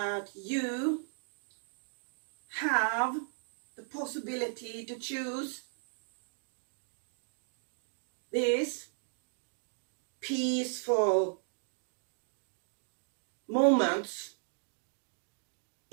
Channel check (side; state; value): left; silent; digital silence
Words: you have the possibility to choose this peaceful moments